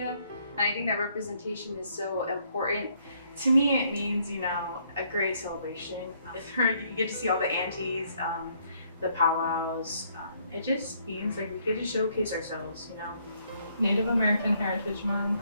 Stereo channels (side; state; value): both; inverted; correlation -0.68